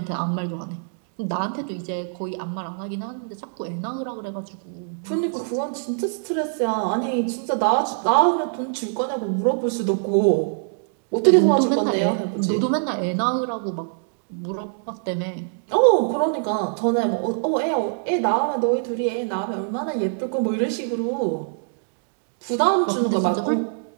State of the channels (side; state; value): left; silent; digital silence